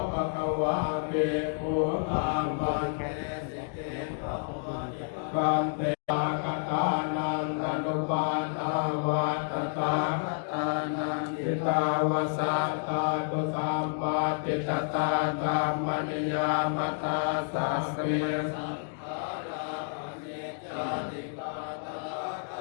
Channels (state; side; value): silent; right; digital silence